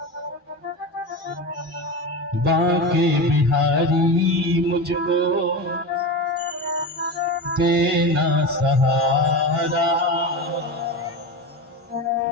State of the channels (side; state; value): both; normal; correlation 0.23